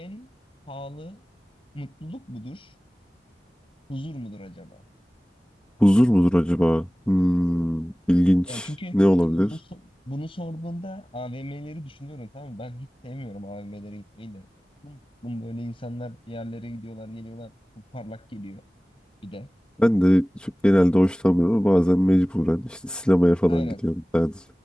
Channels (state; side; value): normal; both; correlation 0.98